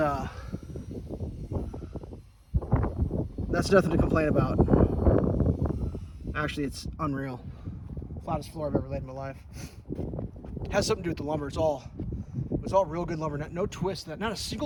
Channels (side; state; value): both; identical; correlation 1.00